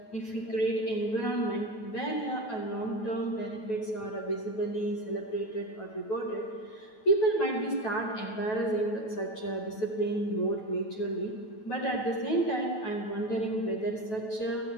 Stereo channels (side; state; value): right; late; 9.2 ms